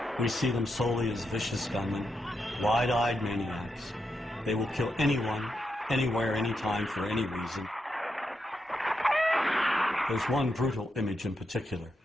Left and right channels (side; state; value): both; normal; correlation 0.84